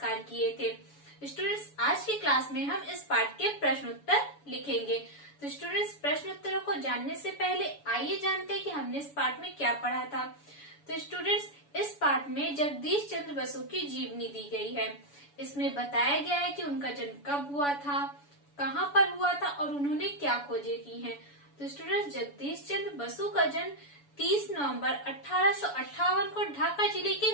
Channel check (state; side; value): late; right; 7.0 ms